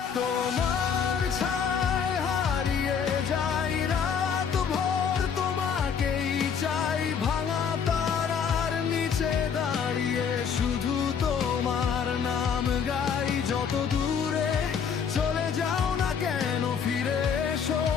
তোমার ছায় হারিয়ে যাই রাত ভোর, তোমাকেই চাই ভাঙা তারার নিচে দাঁড়িয়ে শুধু তোমার নাম গাই। যত দূরে চলে যাও না কেন ফিরে এসো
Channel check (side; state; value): right; quieter; 7.0 dB